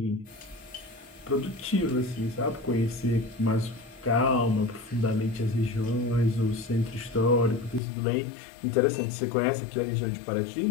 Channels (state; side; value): drops out; right; at 7.8 s